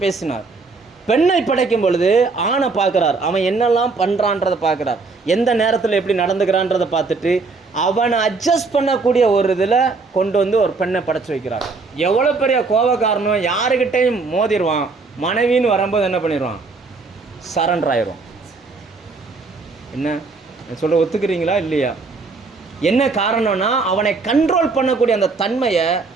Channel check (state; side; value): quieter; left; 4.1 dB